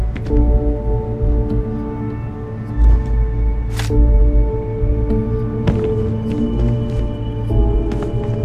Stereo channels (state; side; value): identical; both; correlation 1.00